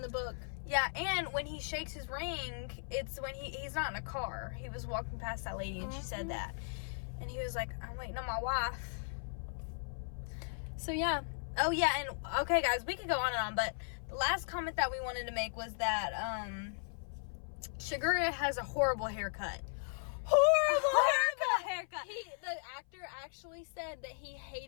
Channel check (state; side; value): silent; right; 53 dB below the other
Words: the book. Yeah, and when he shakes his ring, it's when he's not in a car. He was walking past that lady, and she said that. And he was like, I'm waiting on my wife. So, yeah. Oh, yeah, and, okay, guys, we could go on and on, but the last comment that we wanted to make was that, Shigura has a horrible haircut. Horrible haircut. The actor actually said that he